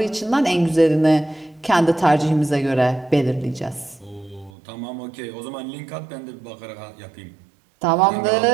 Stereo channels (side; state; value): left; drops out; at 4.5 s